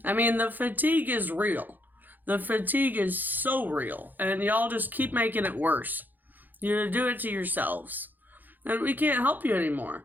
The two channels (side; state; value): left; late; 0.086 ms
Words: I mean, the fatigue is real. The fatigue is so real, and y'all just keep making it worse. You do it to yourselves, and we can't help you anymore.